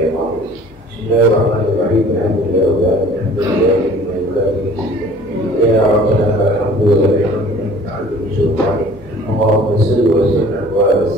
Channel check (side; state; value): both; normal; correlation 0.50